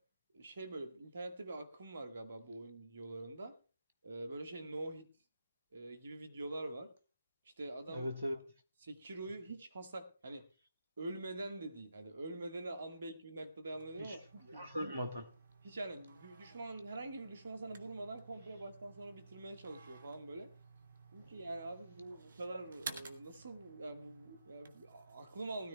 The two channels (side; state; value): both; inverted; correlation -0.85